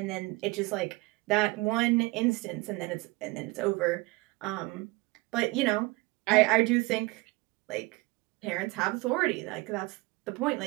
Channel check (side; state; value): left; quieter; 23.0 dB